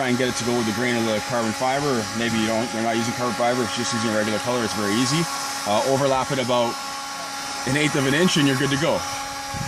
and get it to go with the grain of the carbon fiber. Or maybe you're not using carbon fiber, it's just using a regular color. It's very easy. Overlap it about 1/8 of an inch and you're good to go.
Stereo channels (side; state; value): both; identical; correlation 1.00